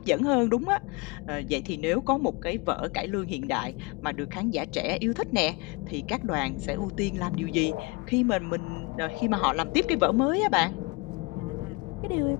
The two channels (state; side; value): quieter; right; 27.4 dB